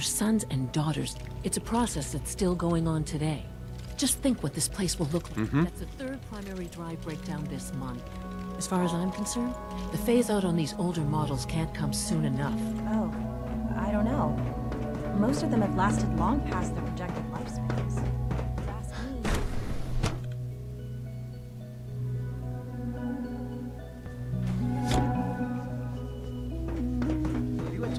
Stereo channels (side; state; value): both; identical; correlation 1.00